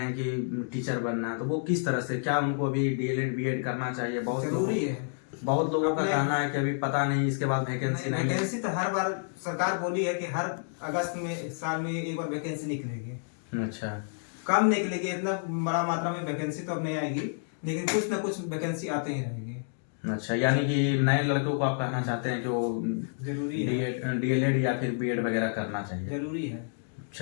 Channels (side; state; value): right; silent; digital silence